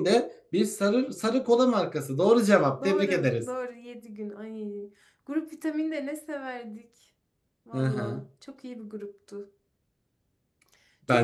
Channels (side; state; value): both; identical; correlation 1.00